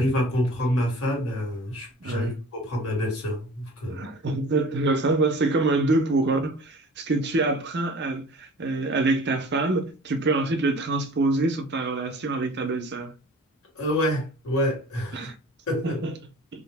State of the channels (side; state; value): both; normal; correlation 0.45